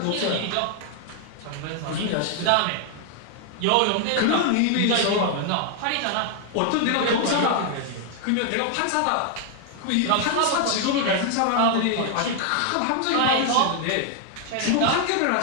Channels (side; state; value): both; different; correlation 0.00